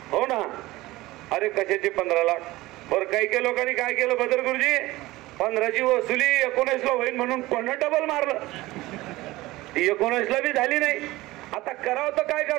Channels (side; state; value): left; quieter; 18.8 dB